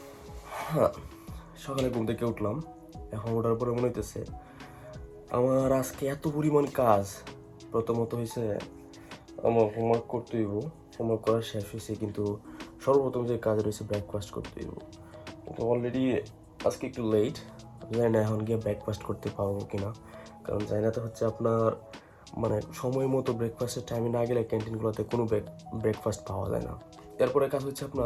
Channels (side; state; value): both; identical; correlation 1.00